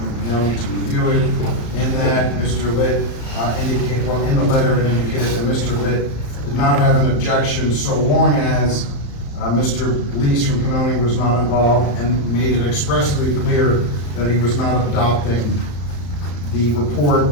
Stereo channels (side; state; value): right; late; 35 ms